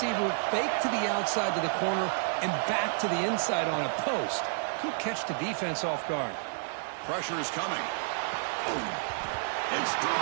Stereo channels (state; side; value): silent; left; digital silence